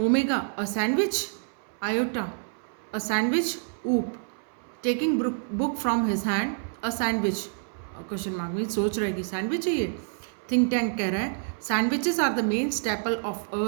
a sandwich. Iota, a sandwich. Oop, taking book from his hand, a sandwich. Question mark में सोच रहा है कि सैंडविच है ये. थिंक टैंक कह रहा है sandwiches are the main staple of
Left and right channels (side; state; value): left; silent; 60 dB below the other